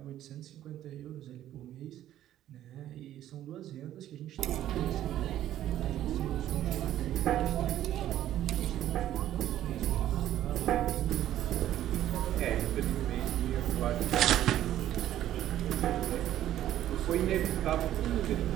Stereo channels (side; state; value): left; quieter; 12.4 dB